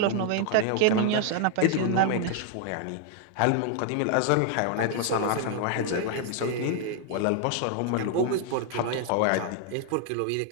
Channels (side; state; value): both; different; correlation 0.00